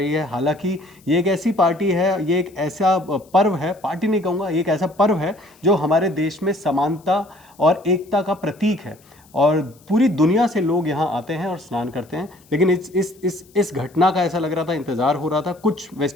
है। हालांकि ये एक ऐसी पार्टी है, ये एक ऐसा पर्व है, पार्टी नहीं कहूँगा, ये एक ऐसा पर्व है जो हमारे देश में समानता और एकता का प्रतीक है और पूरी दुनिया से लोग यहाँ आते हैं और स्नान करते हैं। लेकिन इस घटना का ऐसा लग रहा था, इंतज़ार हो रहा था कुछ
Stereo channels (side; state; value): left; noise; hiss, 29 dB below the sound